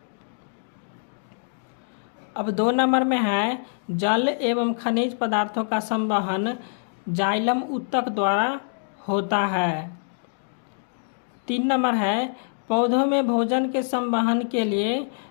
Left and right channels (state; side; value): silent; right; digital silence